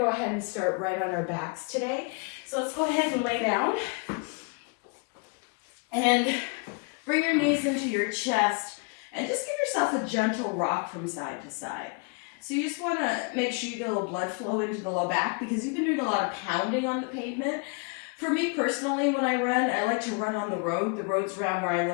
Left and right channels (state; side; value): quieter; right; 33.9 dB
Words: ahead and start right on our backs today. So let's go ahead and lay down and bring your knees into your chest and just give yourself a gentle rock from side to side. So you just wanna make sure you get a little blood flow into the low back because you've been doing a lot of pounding on the pavement. For me personally, when I run, I like to run on the road. The roads around where I